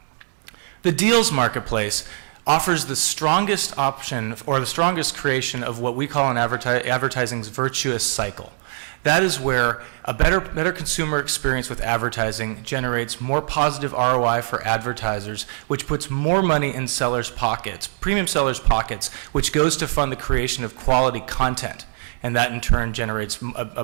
The deals marketplace offers the strongest option or the strongest creation of what we call in advertising's virtuous cycle. That is where a better consumer experience with advertising generates more positive ROI for advertisers, which puts more money in sellers' pockets, premium sellers' pockets, which goes to fund the creation of quality content, and that in turn generates a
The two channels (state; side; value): silent; left; 61 dB below the other